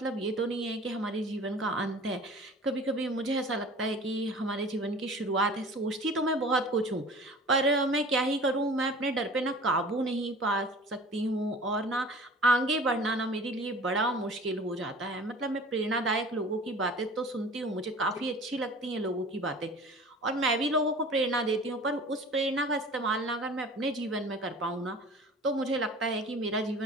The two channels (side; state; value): both; normal; correlation 0.43